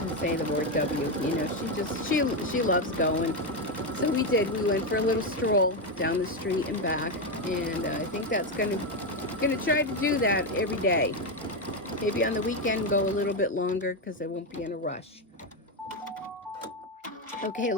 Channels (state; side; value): normal; both; correlation 0.08